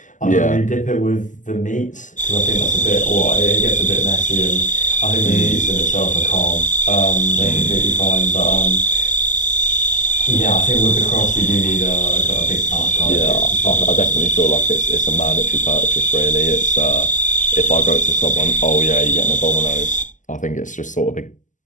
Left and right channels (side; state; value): right; late; 0.37 ms